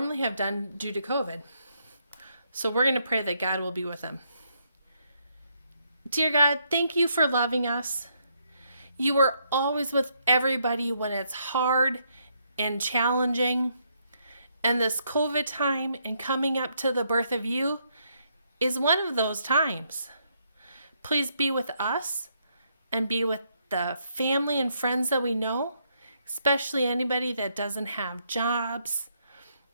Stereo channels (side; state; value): both; inverted; correlation -0.74